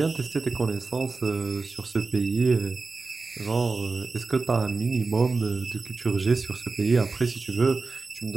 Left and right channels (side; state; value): left; quieter; 4.0 dB